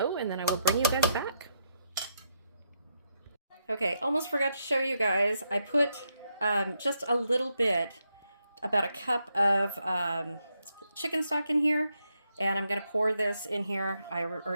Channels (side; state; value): both; inverted; correlation -0.80